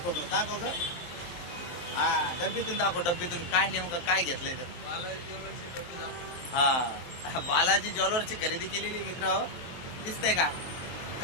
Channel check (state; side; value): late; right; 23 ms